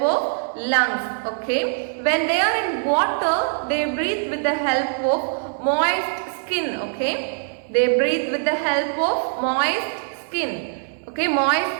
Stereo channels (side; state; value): left; silent; digital silence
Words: of lungs. Okay. When they are in water, they breathe with the help of moist skin. Okay. They breathe with the help of moist skin. Okay.